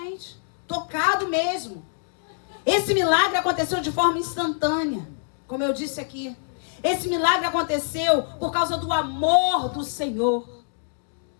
Tocado mesmo. Esse milagre aconteceu de forma instantânea, como eu disse aqui. Esse milagre aconteceu por causa do amor do Senhor.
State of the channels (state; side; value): silent; right; digital silence